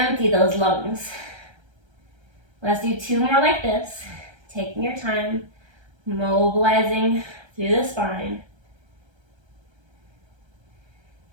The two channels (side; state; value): left; late; 1.3 ms